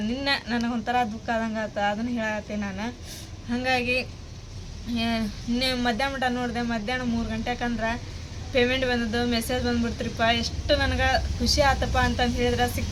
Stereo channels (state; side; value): identical; both; correlation 1.00